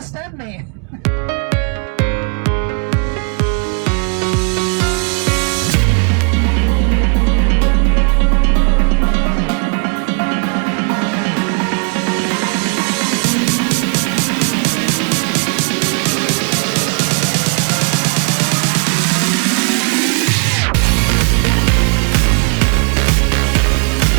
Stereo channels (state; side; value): quieter; left; 37.8 dB